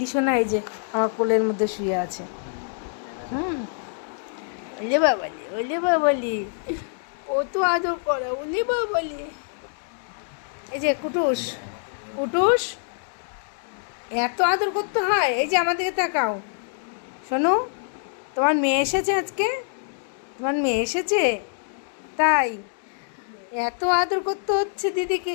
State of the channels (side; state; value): right; silent; digital silence